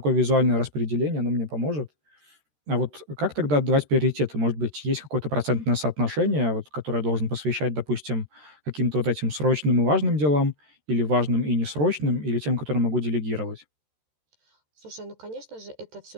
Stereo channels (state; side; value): late; left; 13 ms